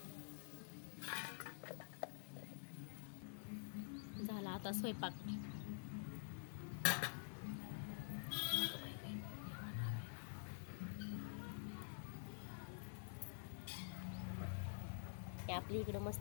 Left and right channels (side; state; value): right; silent; digital silence